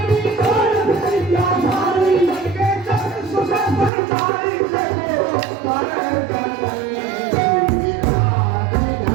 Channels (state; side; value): drops out; left; at 3.9 s